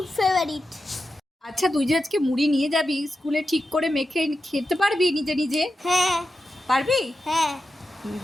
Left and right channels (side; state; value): both; normal; correlation 0.90